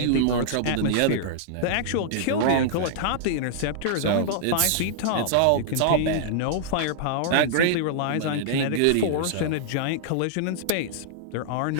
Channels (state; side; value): different; both; correlation -0.01